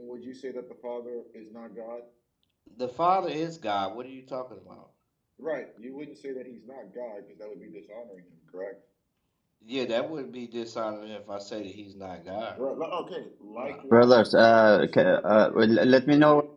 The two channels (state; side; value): identical; both; correlation 1.00